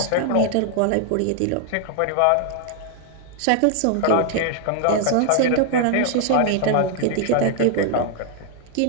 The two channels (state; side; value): different; both; correlation 0.00